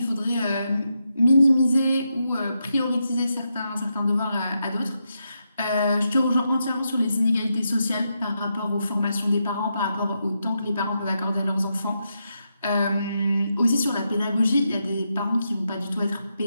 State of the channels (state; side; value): inverted; both; correlation -0.84